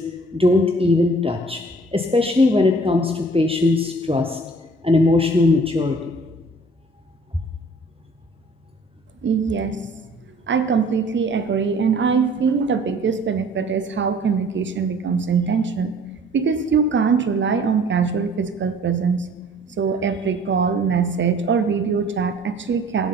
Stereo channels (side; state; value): both; normal; correlation 0.52